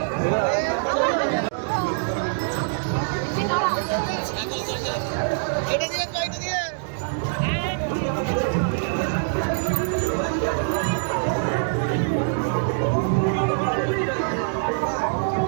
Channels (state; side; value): silent; left; digital silence